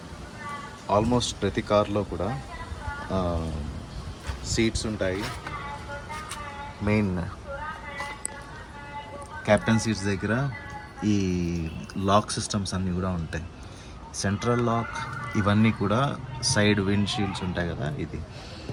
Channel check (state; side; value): identical; both; correlation 1.00